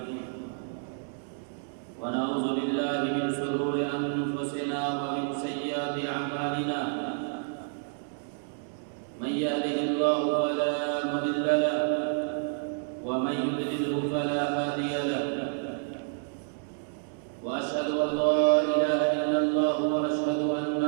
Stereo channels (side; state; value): left; silent; digital silence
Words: ونعوذ بالله من شرور أنفسنا ومن سيئات أعمالنا من يهده الله فلا مضل له ومن يضلل فلا هادي له وأشهد أن لا إله إلا الله وأشهد أن